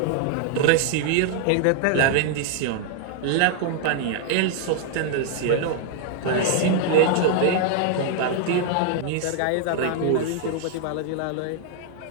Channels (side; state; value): both; different; correlation 0.00